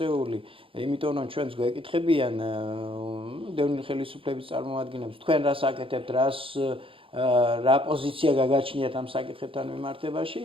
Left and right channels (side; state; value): left; late; 0.26 ms